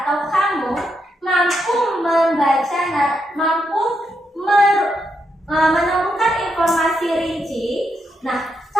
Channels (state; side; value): normal; both; correlation 0.81